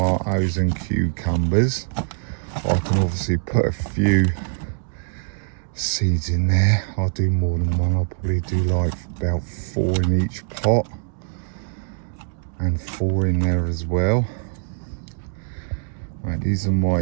and cucumbers. I can obviously put a few seeds in there. I'll do more than one. I'll probably do like about 4 in each pot and 4 in there as well. Right, these are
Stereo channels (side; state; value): left; silent; digital silence